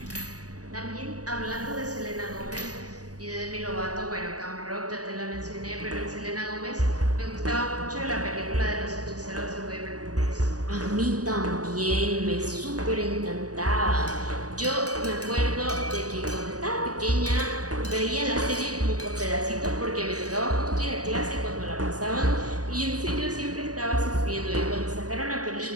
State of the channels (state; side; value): late; left; 0.68 ms